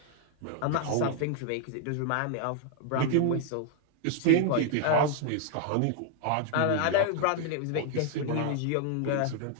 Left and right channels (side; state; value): both; different; correlation 0.00